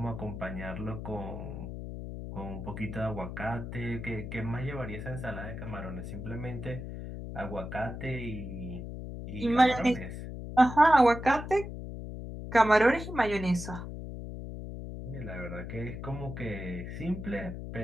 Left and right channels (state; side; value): noise; left; hum, 8 dB below the sound